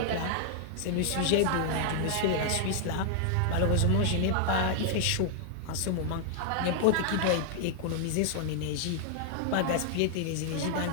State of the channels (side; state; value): both; different; correlation 0.00